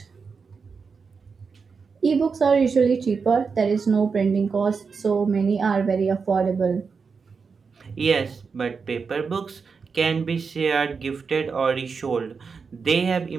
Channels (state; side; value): quieter; left; 5.3 dB